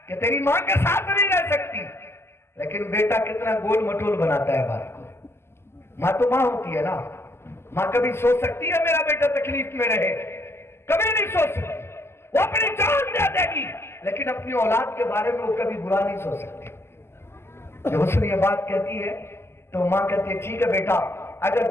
کہ تیری ماں کے ساتھ نہیں رہ سکتی. لیکن بیٹا کتنا گول مٹول بناتا ہے بات کو. ماں تو ماں ہوتی ہے نا, ماں کبھی سوچ سکتی ہے میرا بیٹا تکلیف میں رہے؟ کبھی نہیں سوچ سکتی. وہ اپنی جان دے دے گی لیکن اپنی اولاد کے بارے میں وہ کبھی برا نہیں سوچ سکتی. جب اس نے یہ بات کہتی ہے تو ماں کہتی ہے ٹھیک ہے بیٹا, اگر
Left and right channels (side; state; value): right; late; 0.12 ms